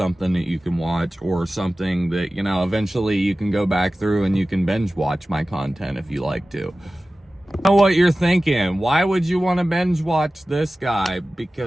that you can watch, or something that, you know, eventually you can go back through and you can binge watch my content if you like to. I know what you're thinking. Why would you want to binge watch this guy?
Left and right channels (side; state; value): both; normal; correlation 0.96